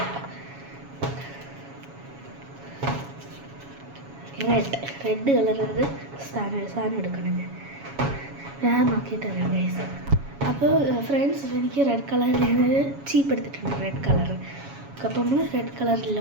റെഡ് കളറത് സാധനം എടുക്കണം. ഞാൻ നോക്കിയിട്ട് അറിയാം ഗൈസ്. അപ്പോൾ ഫ്രണ്ട്സ്, എനിക്ക് റെഡ് കളറിൽ ഞാനൊരു ചീപ്പ് എടുത്തിട്ടുണ്ട്, റെഡ് കളർ. അപ്പോൾ നമ്മൾ റെഡ്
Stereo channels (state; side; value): late; left; 7.2 ms